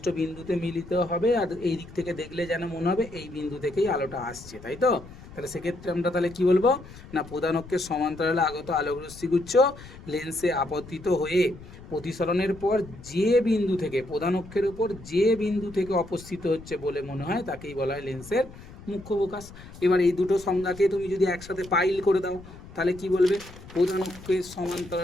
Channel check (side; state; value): left; noise; rumble, 17 dB below the sound